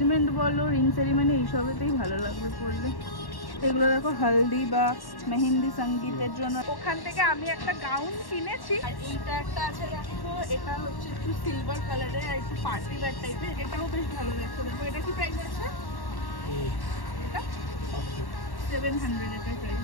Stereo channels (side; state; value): right; late; 1.1 ms